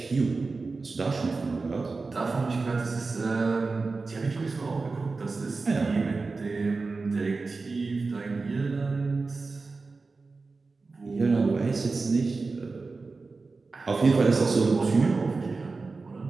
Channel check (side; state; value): left; quieter; 4.0 dB